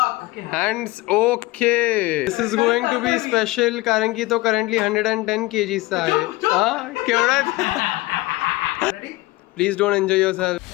Hands okay. This is going to be special कारण की तो करंटली 110 kgचा आहे. हा केवढा? Please don't enjoy yourself.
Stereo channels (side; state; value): right; quieter; 20.7 dB